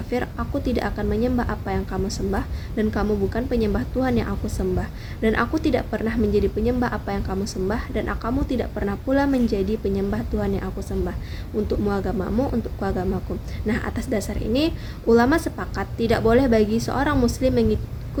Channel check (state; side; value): identical; both; correlation 1.00